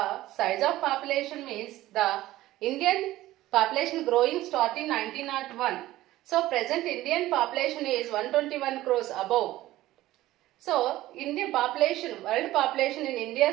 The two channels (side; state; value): left; quieter; 16.0 dB